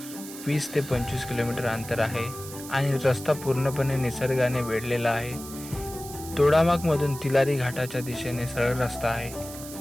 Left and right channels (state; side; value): noise; right; hiss, 13 dB below the sound